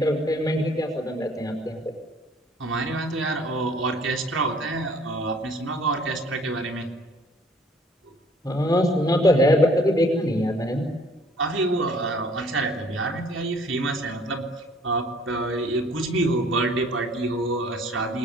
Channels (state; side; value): normal; both; correlation 0.57